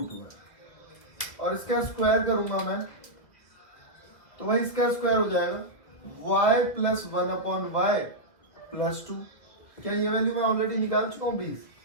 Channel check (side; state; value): right; late; 2.2 ms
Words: और इसका स्क्वायर करूंगा मैं, तो भाई इसका स्क्वायर हो जाएगा y प्लस 1/y प्लस 2। क्या ये वैल्यू मैं ऑलरेडी निकाल चुका हूँ 20,